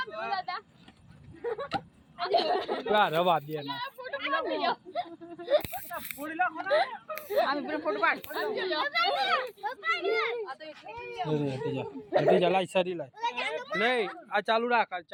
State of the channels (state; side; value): identical; both; correlation 1.00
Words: દાદા રવા દે ના ફોટો બનાવી લો আমি পুরো ফটো পাড় જા લાઈ સારી લાઈ લે આ ચાલુ રાખ